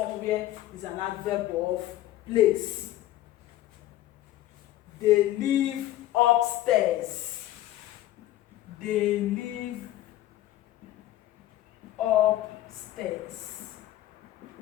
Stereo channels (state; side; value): quieter; right; 14.4 dB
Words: is an adverb of place. They live upstairs. They live upstairs.